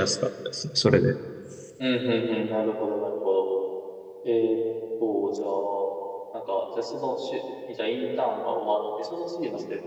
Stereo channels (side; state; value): both; identical; correlation 1.00